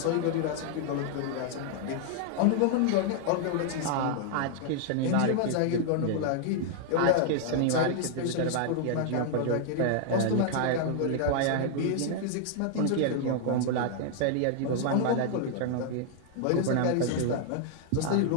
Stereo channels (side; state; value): both; different; correlation 0.00